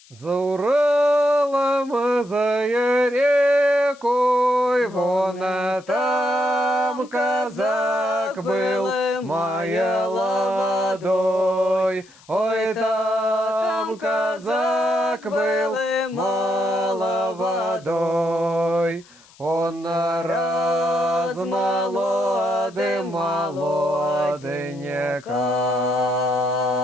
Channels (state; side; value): noise; left; hiss, 26 dB below the sound